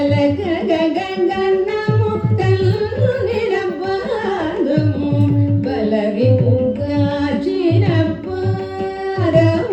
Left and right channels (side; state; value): both; identical; correlation 1.00